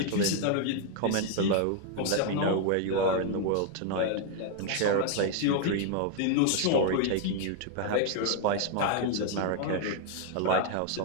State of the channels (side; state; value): both; different; correlation 0.01